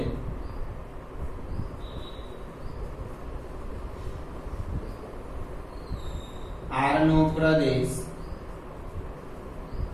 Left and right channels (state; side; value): identical; both; correlation 1.00